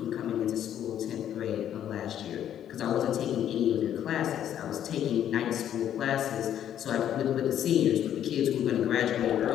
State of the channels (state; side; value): quieter; right; 10.4 dB